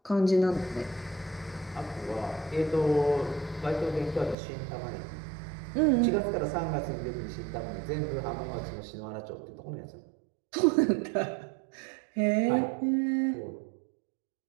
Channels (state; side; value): drops out; left; at 4.4 s